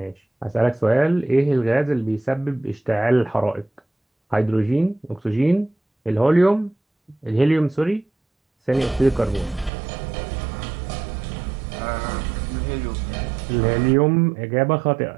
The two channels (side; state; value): left; drops out; at 9.7 s